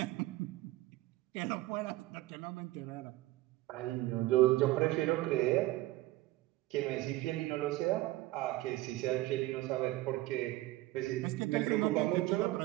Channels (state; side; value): quieter; left; 17.8 dB